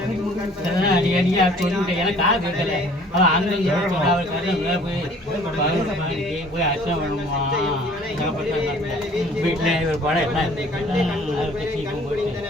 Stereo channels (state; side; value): normal; both; correlation 0.53